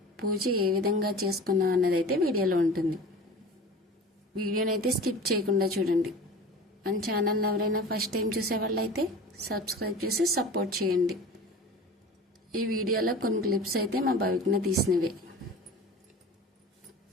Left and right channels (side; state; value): both; normal; correlation 0.37